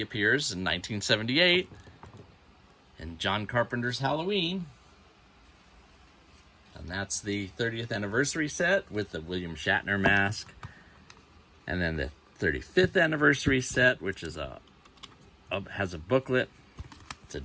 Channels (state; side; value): identical; both; correlation 1.00